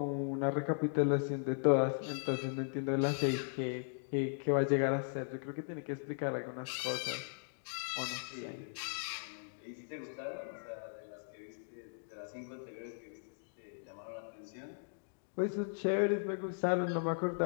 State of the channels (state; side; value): silent; right; digital silence